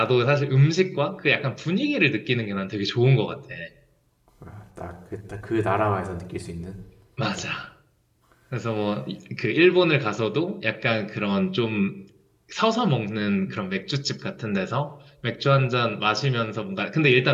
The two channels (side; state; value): both; identical; correlation 1.00